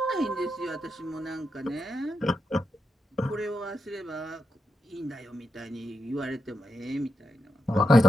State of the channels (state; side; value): normal; both; correlation 0.85